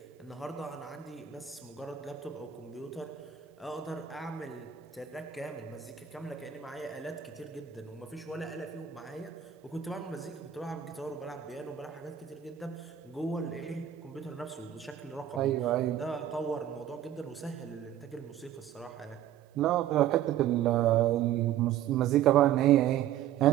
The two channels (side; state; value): left; quieter; 10.7 dB